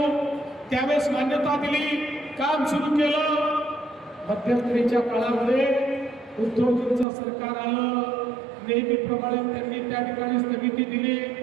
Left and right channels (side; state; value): left; drops out; at 7.1 s